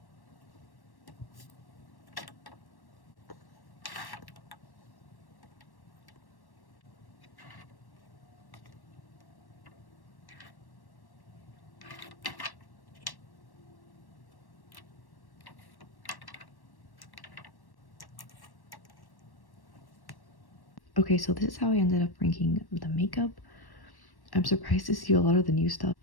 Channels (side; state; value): right; late; 1.1 ms